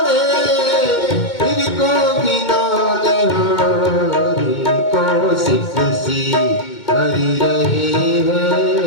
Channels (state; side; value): late; right; 2.2 ms